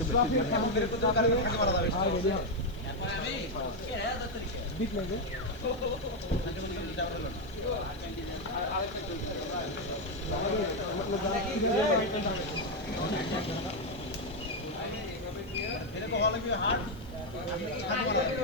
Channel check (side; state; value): right; noise; hiss, 26 dB below the sound